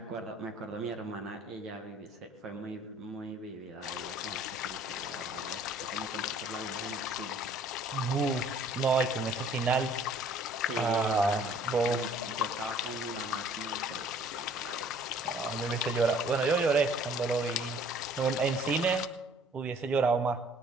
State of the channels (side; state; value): both; normal; correlation 0.55